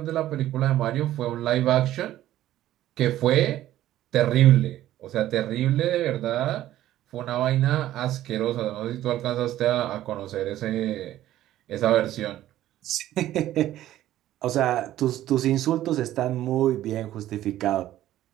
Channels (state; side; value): quieter; left; 13.6 dB